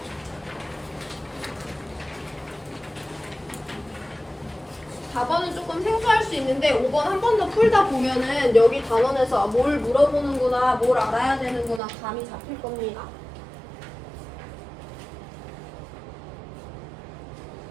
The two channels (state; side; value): drops out; left; at 11.8 s